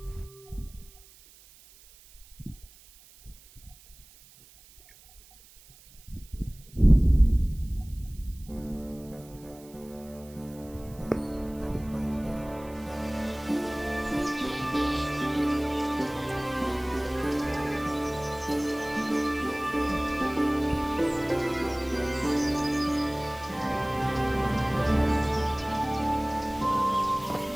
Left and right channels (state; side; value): noise; right; hiss, 24 dB below the sound